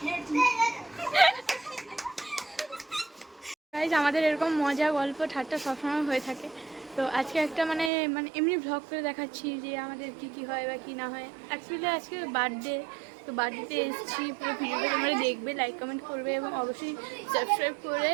hate you. Guys, আমাদের এরকম মজা গল্প ঠাট্টা সবসময় হয়ে থাকে। তো আজকে একটা মানে এমনি ভ্লগ করে দেখাচ্ছি যে আমাদের কি হয় বা কি না হয়। অ্যাকচুয়ালি আজকে বার্থডে, তো বার্থডেতে এসেছি। পুরো ভিডিওটা তোমরা দেখবে, লাইক কমেন্ট করবে এবং অবশ্যই সাবস্ক্রাইব করে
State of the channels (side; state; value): left; drops out; at 7.9 s